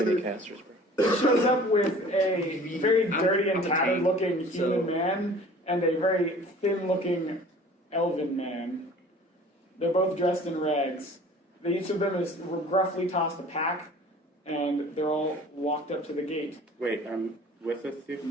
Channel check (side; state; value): both; normal; correlation 0.47